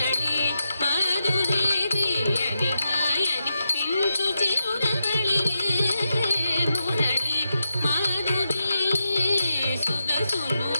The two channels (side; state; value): both; inverted; correlation -0.86